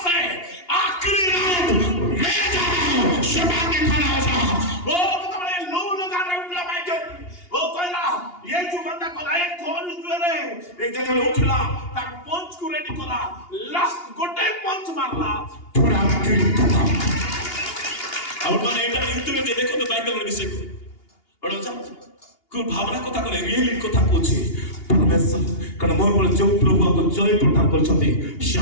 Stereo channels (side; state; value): right; late; 2.8 ms